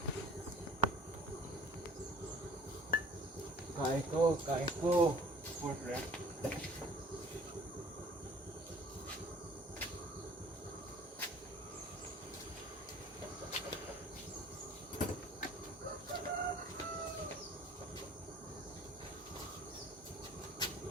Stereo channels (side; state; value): both; normal; correlation 0.51